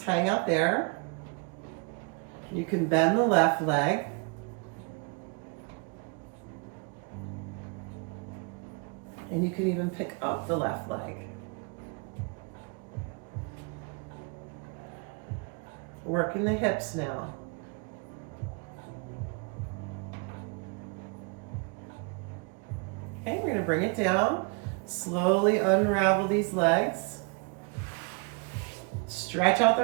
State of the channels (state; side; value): quieter; left; 32.6 dB